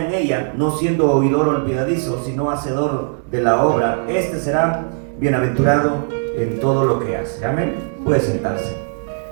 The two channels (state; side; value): silent; left; digital silence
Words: en ella, no siendo oidor olvidadizo, sino hacedor de la obra, este será bienaventurado en todo lo que hace. Amén. Puede sentarse.